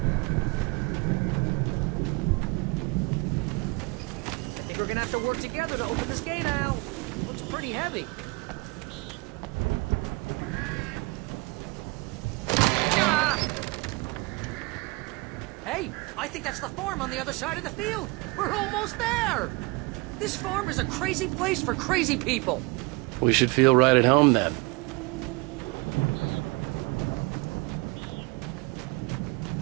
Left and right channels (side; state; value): left; quieter; 26.7 dB